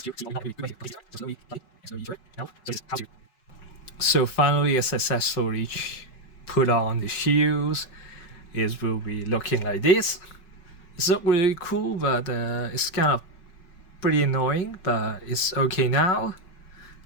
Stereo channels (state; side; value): late; right; 5.4 ms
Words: So finally, I successfully put on the shields. It will be looking like this. It's not really cool, but it's kind of pretty annoying, but it's okay now.